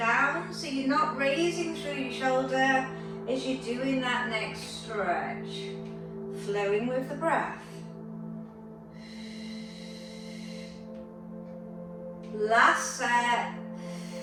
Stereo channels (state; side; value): identical; both; correlation 1.00